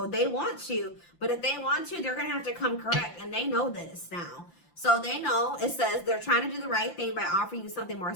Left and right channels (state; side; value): late; right; 5.8 ms